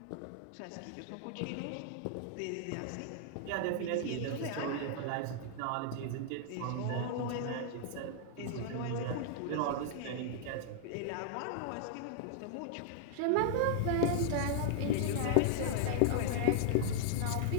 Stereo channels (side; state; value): both; different; correlation -0.01